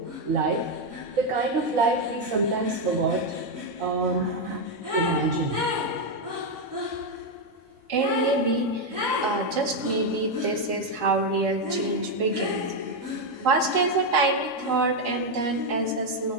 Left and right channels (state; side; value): late; left; 4.3 ms